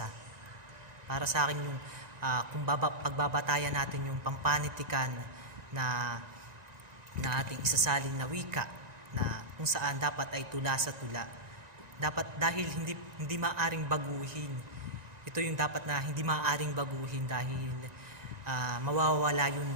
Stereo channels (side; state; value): left; late; 1.9 ms